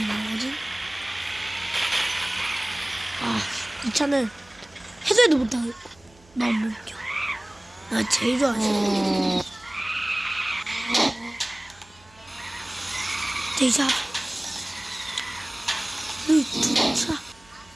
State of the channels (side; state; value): right; noise; hum, 27 dB below the sound